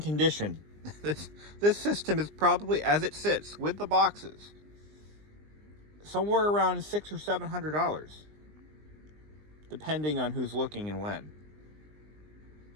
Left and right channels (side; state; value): left; late; 20 ms